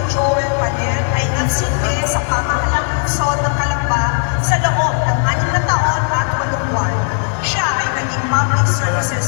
Joel Paner ay nagsilbi sa pamahalaang lungsod ng Calamba sa loob ng 6 na taon at 8 buwan. Siya ay naging Public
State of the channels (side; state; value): right; silent; 69 dB below the other